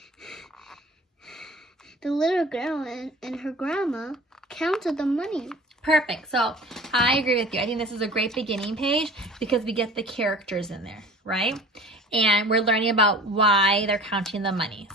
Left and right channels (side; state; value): both; normal; correlation 0.43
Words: the little girl and her grandma counted the money. Perfect. So I agree with you. I think this is a great beginning page because we get the characters in there, right? And we're learning about why they're counting the money.